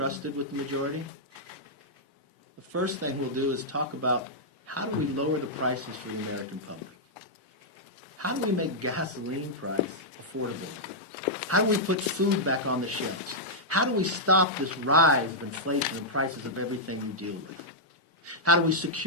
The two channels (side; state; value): both; normal; correlation -0.08